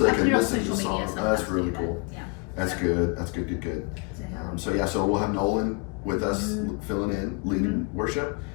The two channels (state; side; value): quieter; right; 30.3 dB